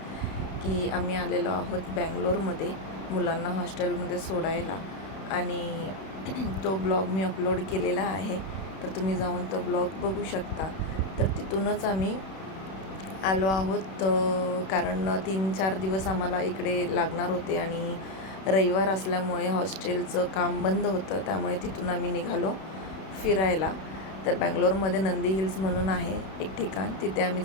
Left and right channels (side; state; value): right; late; 31 ms